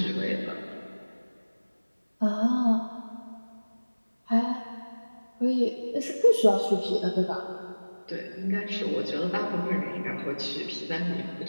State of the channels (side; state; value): both; inverted; correlation -1.00